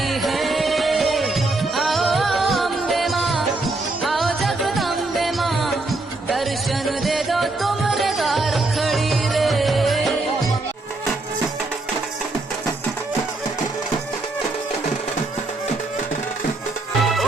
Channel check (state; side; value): quieter; left; 3.1 dB